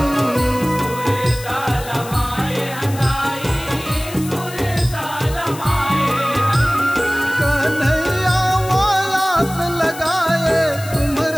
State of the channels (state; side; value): noise; left; hiss, 14 dB below the sound